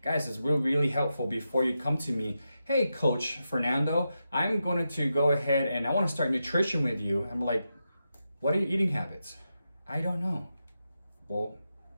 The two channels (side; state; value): both; inverted; correlation -0.88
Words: guys, it's really helpful before you come to me. Hey, Coach Fernando, I'm going to go ahead and I want to start nutrition with you. I'm like, what are your eating habits? I don't know. Well,